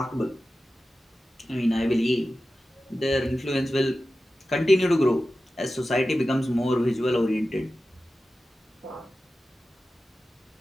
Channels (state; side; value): normal; both; correlation 0.94